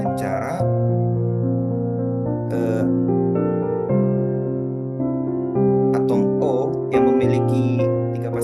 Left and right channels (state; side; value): identical; both; correlation 1.00